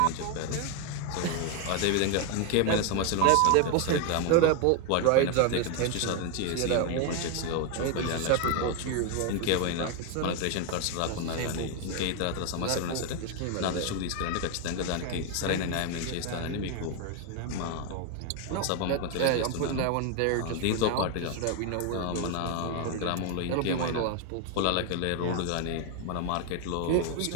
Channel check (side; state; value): both; different; correlation 0.01